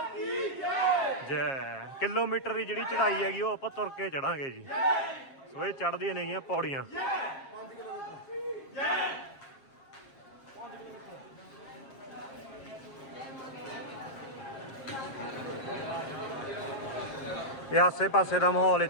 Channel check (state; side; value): late; right; 7.4 ms